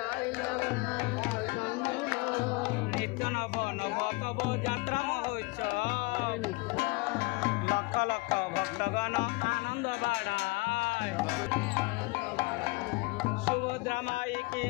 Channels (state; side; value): quieter; right; 25.2 dB